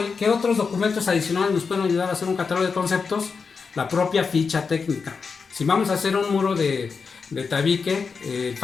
documentos adicionales nos pueden ayudar a hacer un catálogo de conceptos? La propia ficha técnica. Si vamos a hacer un muro de tabique, el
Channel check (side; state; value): right; quieter; 5.3 dB